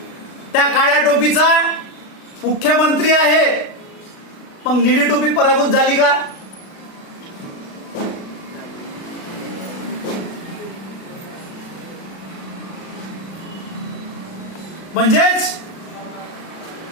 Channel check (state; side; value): late; right; 36 ms